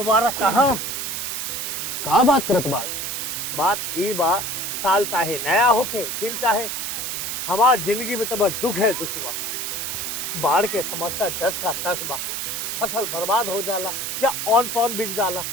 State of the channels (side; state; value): right; noise; hiss, 3 dB below the sound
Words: कहा। का बात करत बाड़? बात ई बा, साल चाहे नया होके दिन चाहे, हमार जिंदगी में तो बस दुख है, दुख बा। बाढ़ के समस्या 10 का 10 बा। फसल बर्बाद हो जाला या ऑन पॉन बिक जाला,